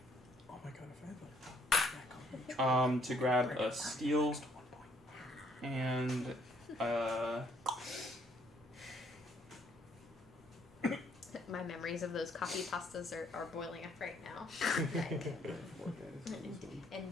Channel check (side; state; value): both; normal; correlation 0.67